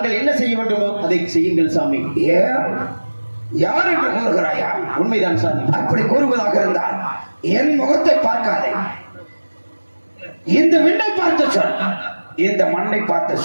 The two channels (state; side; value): inverted; both; correlation -1.00